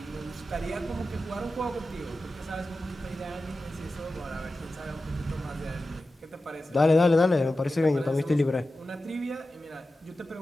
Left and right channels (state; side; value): normal; both; correlation 0.93